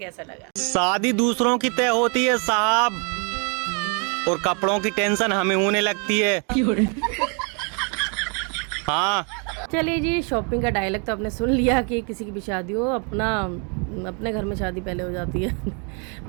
लगा। शादी दूसरों की तय होती है साहब, और कपड़ों की टेंशन हमें होने लगती है। हाँ चलिए जी, शॉपिंग का डायलॉग तो आपने सुन लिया कि किसी की भी शादी हो, अपने घर में शादी पहले हो जाती है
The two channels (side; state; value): left; quieter; 36.6 dB